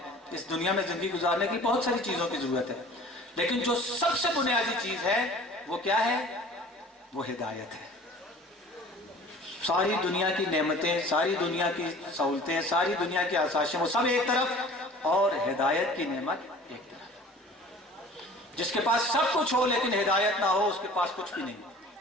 اس دنیا میں زندگی گزارنے کی بہت ساری چیزوں کی ضرورت ہے، لیکن جو سب سے بنیادی چیز ہے وہ کیا ہے؟ وہ ہدایت ہے. ساری دنیا کی نعمتیں، ساری دنیا کی سہولتیں، ساری دنیا کی آسائشیں، وہ سب ایک طرف، اور ہدایت کی نعمت ایک طرف. جس کے پاس سب کچھ ہو لیکن ہدایت نہ ہو، اس کے پاس کچھ بھی نہیں.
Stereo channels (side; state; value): both; normal; correlation 0.45